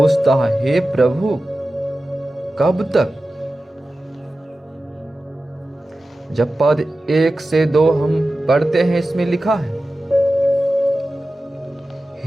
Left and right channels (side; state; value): both; normal; correlation 0.94